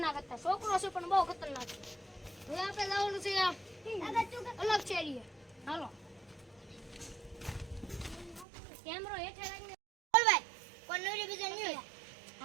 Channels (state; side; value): drops out; left; at 8.5 s